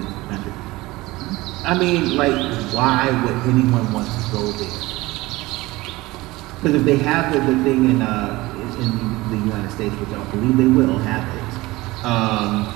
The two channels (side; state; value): left; quieter; 20.1 dB